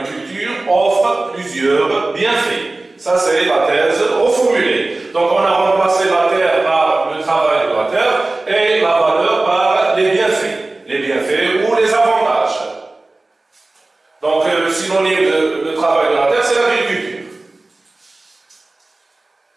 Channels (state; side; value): quieter; left; 3.0 dB